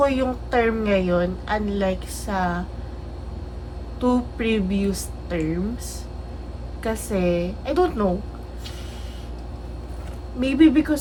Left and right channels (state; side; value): identical; both; correlation 1.00